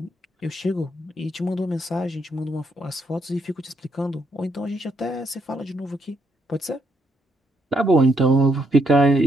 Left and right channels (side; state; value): both; normal; correlation 0.75